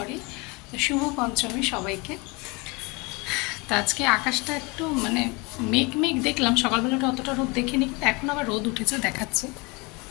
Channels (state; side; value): quieter; right; 27.3 dB